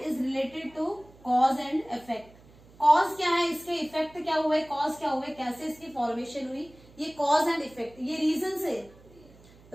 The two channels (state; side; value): noise; right; hum, 25 dB below the sound